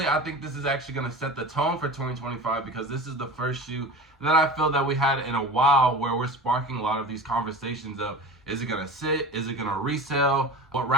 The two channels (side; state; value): both; normal; correlation 0.34